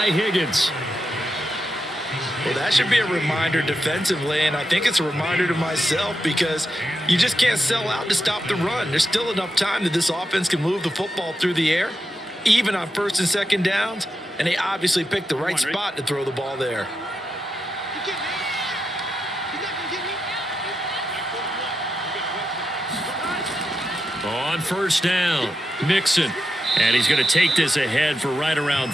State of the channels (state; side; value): normal; both; correlation 0.87